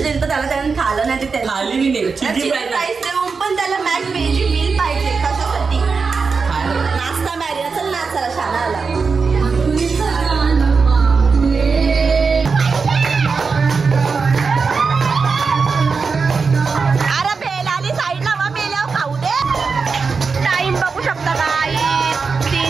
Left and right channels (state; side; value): quieter; left; 4.9 dB